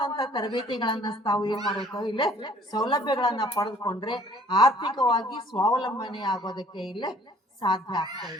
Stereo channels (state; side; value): normal; both; correlation 0.56